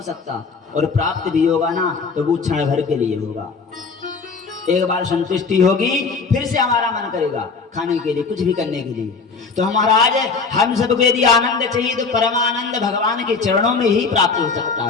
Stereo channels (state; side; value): quieter; right; 4.8 dB